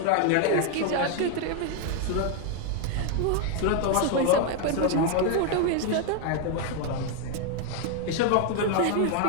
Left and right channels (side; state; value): both; different; correlation 0.00